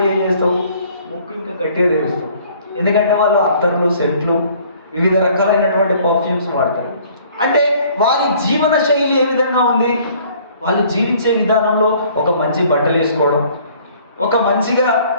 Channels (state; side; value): inverted; both; correlation -0.56